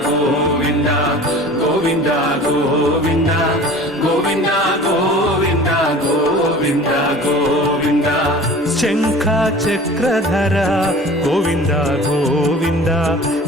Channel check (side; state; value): both; normal; correlation 0.42